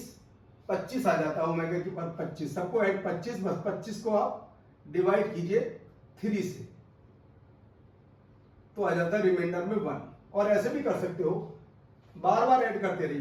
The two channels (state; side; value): identical; both; correlation 1.00